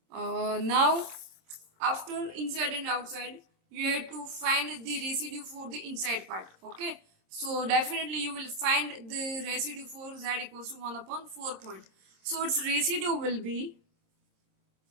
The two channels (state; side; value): late; left; 26 ms